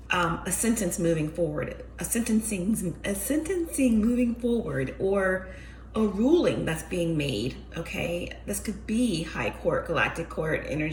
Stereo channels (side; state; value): both; identical; correlation 1.00